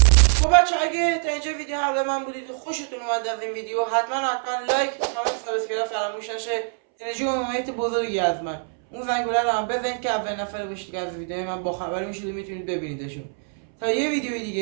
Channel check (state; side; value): silent; left; 62 dB below the other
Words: خب بچه اگه تا اینجا ویدیو همراه من بودید و خوشتون اومد از این ویدیو، حتما لایک، کامنت، سابسکرایب فراموش نشه. انرژی و حمایت بزرگی از من. اون زنگوله رو هم بزنید که اولین نفر باشید که از ویدیو من با خبری میشید و میتونید ببینیدشون. تا یه ویدیو